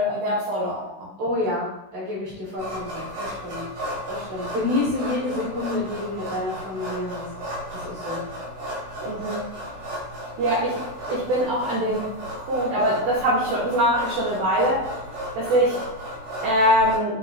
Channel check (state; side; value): late; left; 16 ms